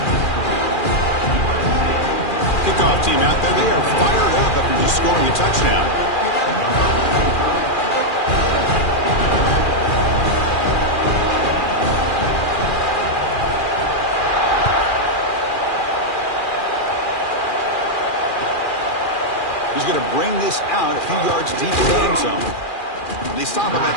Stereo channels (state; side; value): late; right; 2.4 ms